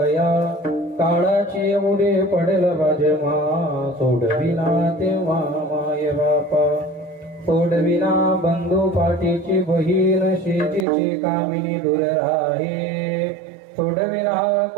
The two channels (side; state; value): left; drops out; at 10.9 s